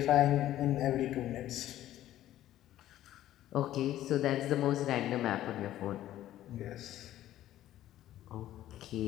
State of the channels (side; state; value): right; quieter; 13.3 dB